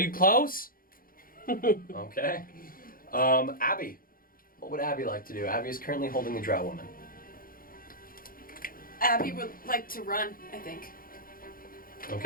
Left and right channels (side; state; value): right; late; 0.42 ms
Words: close? okay. Abby, what would Abby like to do? Abby is currently holding the drow woman. Abby would like to run, I think.